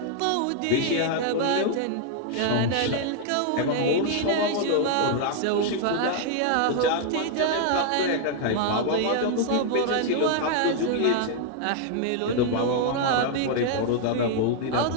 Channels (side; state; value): both; different; correlation 0.00